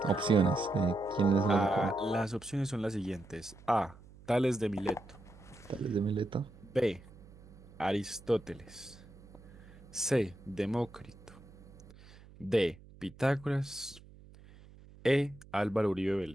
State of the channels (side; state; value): right; noise; hum, 21 dB below the sound